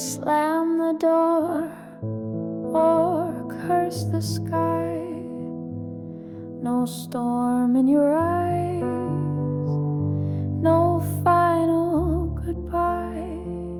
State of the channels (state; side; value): identical; both; correlation 1.00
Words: the door or curse the sky. No storm in your eyes, no final goodbye.